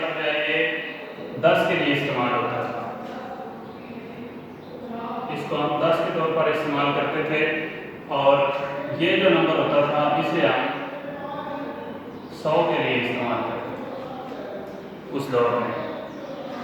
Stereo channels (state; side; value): identical; both; correlation 1.00